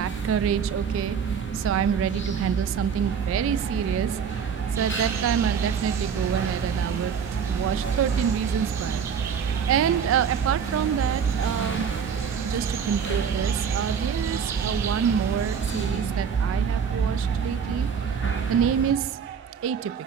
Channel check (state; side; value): quieter; left; 7.0 dB